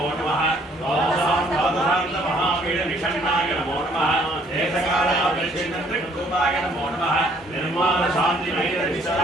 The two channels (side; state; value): both; normal; correlation 0.63